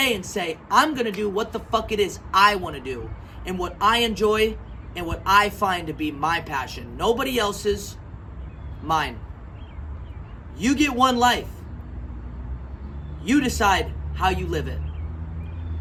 and say, I'm gonna do what the fuck it is I wanna do, and what I enjoy, and what I find to be my passion. Nobody else's, mine. You get one life. You decide how you live it.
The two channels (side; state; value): both; identical; correlation 1.00